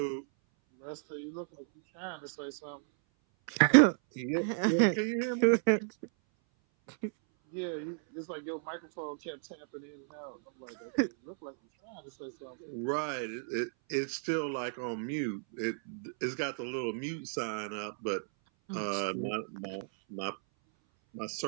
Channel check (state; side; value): silent; left; 56 dB below the other